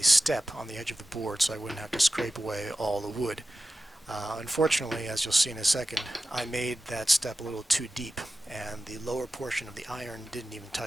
step on the edge of the board so I wouldn't have to scrape away all the wood. Unfortunately, as you'll see in a second, I made that step a little too deep, and the lower portion of the iron didn't even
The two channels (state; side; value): normal; both; correlation 0.94